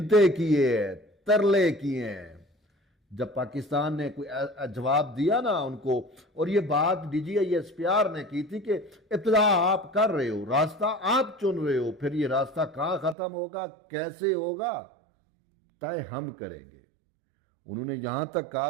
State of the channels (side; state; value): left; drops out; at 13.2 s